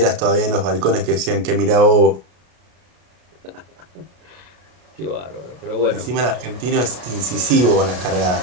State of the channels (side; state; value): left; late; 33 ms